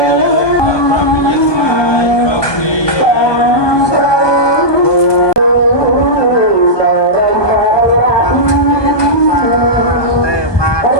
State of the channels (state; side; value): late; right; 1.2 ms